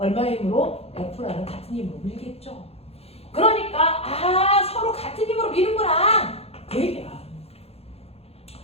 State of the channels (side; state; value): right; late; 0.29 ms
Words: 힘으로? F라는 같은 힘으로 밀겠죠. 그러니까 서로 같은 힘으로 미는구나 그 얘기야.